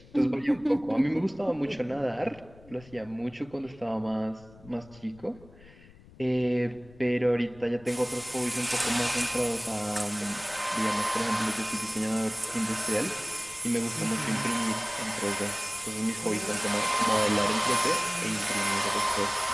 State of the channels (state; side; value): noise; left; rumble, 23 dB below the sound